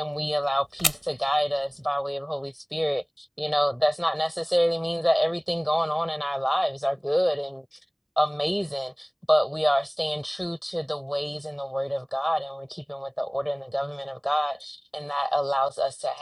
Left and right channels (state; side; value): identical; both; correlation 1.00